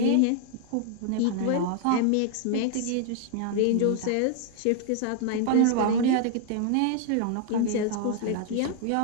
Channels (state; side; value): different; both; correlation 0.00